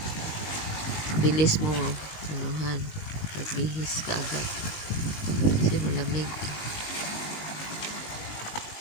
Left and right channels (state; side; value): late; right; 19 ms